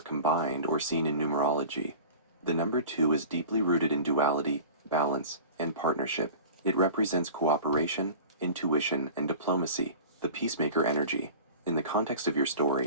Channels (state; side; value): inverted; both; correlation -0.37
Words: combined or seen in numerology. The number 2 is deeply rooted in duality, balance, and partnership. It represents cooperation, intuition, and diplomacy, the peacemaker energy. In the context of your